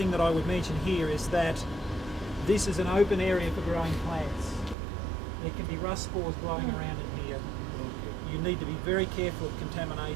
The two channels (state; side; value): drops out; left; at 4.8 s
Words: that I would mention here is that this is an open area for growing plants. There can be rust spores blowing around in here. You need to be very careful of